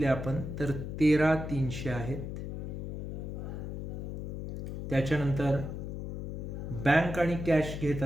आपण तर 13,300 आहेत. त्याच्यानंतर बँक आणि कॅश घेत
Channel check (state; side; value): noise; left; hum, 5 dB below the sound